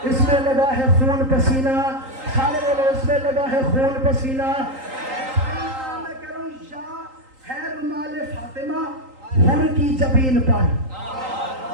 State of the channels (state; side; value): late; left; 3.8 ms